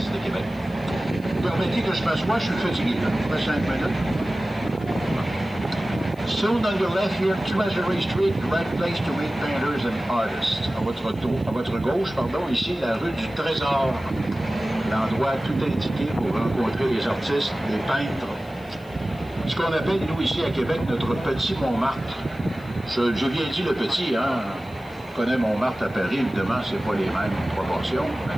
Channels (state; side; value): noise; left; hiss, 28 dB below the sound